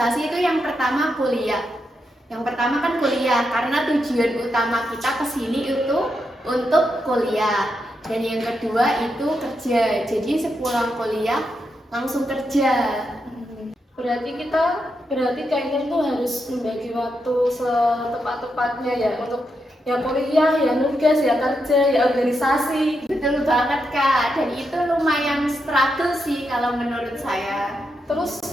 itu yang pertama kuliah. Yang pertama kan kuliah, karena tujuan utama kita kesini itu untuk kuliah. Dan yang kedua itu kerja. Jadi sepulang kuliah langsung kerja. Berarti Kak Intan tuh harus membagi waktu setepat-tepatnya ya untuk ya kuliah, ya nugas, ya kerja, ya organisasi. Betul banget Kak, dan itu lumayan struggle sih kalau menurut saya. Terus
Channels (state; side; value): normal; both; correlation 0.84